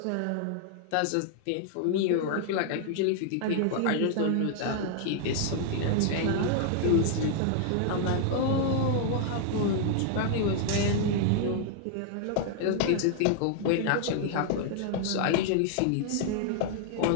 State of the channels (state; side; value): different; both; correlation 0.00